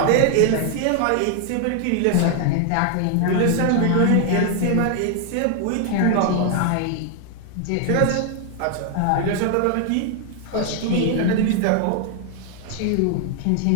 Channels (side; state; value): both; different; correlation 0.00